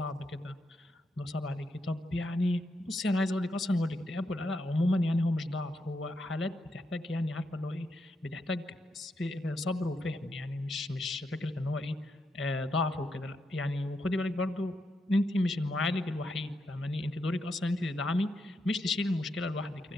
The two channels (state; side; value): normal; both; correlation 0.82